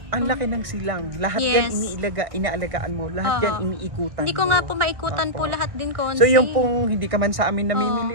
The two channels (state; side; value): late; left; 1.6 ms